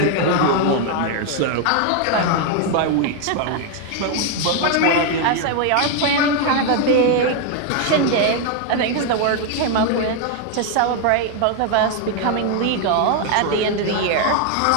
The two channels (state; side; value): different; both; correlation 0.01